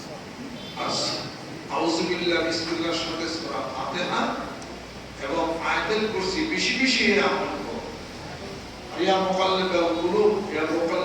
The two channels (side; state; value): both; identical; correlation 1.00